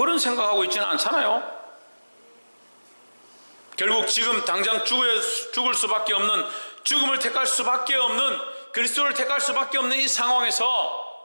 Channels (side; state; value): both; inverted; correlation -1.00